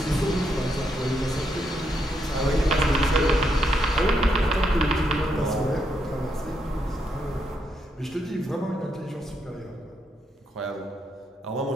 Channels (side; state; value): both; normal; correlation 0.79